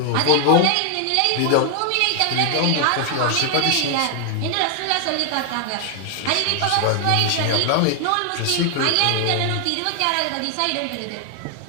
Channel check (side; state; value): both; different; correlation 0.00